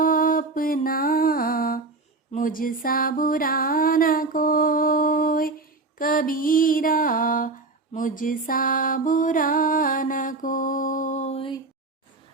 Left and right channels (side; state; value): left; quieter; 3.6 dB